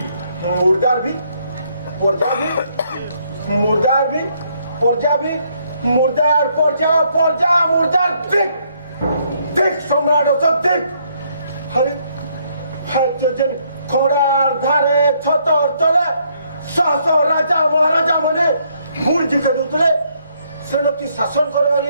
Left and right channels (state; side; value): inverted; both; correlation -0.70